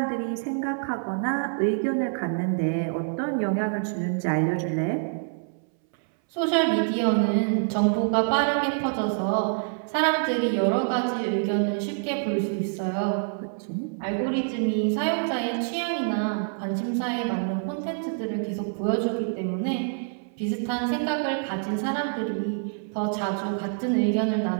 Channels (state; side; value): silent; left; 61 dB below the other